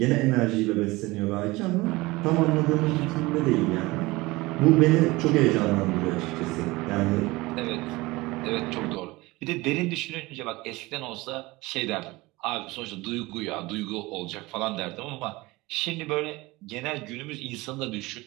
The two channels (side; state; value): left; quieter; 21.4 dB